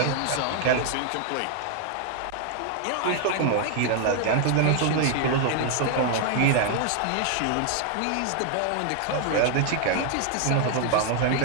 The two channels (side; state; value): both; different; correlation 0.00